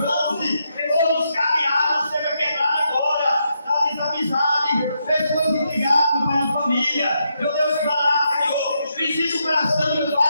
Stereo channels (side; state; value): both; inverted; correlation -0.81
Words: todos os cadeados, seja quebrado agora. Desamizade, pessoas intrigadas, Pai, na família. Meu Deus, vai lá, Senhor. Visita o coração, meu